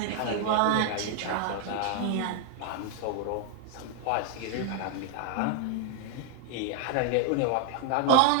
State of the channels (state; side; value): different; both; correlation 0.00